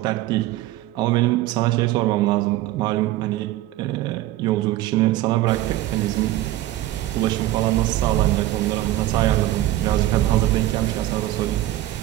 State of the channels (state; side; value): quieter; left; 15.1 dB